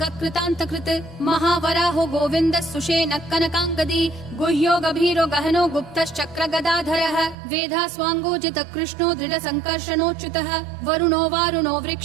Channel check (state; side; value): drops out; left; at 7.4 s